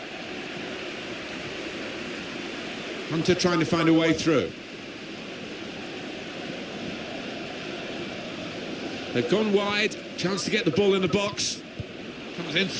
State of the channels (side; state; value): both; identical; correlation 1.00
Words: Hunter trying to find a way through. They've gone wide. Chance to get the ball in the box. Comes in